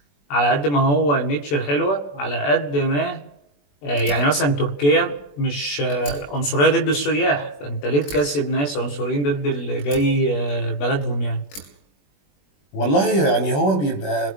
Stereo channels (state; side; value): late; right; 21 ms